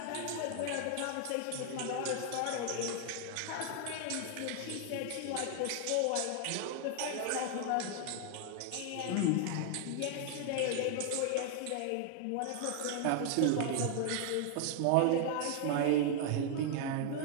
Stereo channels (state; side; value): different; both; correlation 0.00